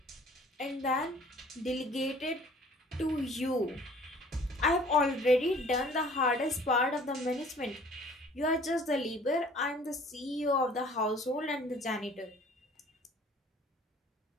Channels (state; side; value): normal; both; correlation 0.52